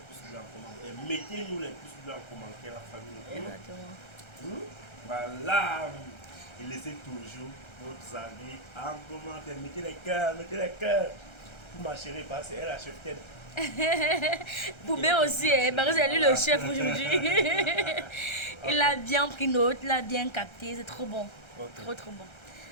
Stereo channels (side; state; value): right; late; 1.3 ms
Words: bleus en commentaire. Mettez-nous les pouces bleus en commentaire, la famille. Exactement. Voilà. Et laissez toujours vos avis en commentaire. Mettez les cœurs, mettez les cœurs. Pour ma chérie, parce qu'elle a chef tête. Poubé aussi, parce que c'est lui le chef aujourd'hui. Il a bien pris note, il a bien capté, c'est trop bon. Ok. Trop bon.